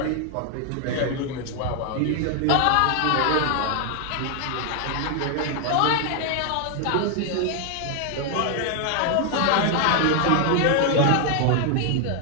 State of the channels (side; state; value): both; different; correlation 0.00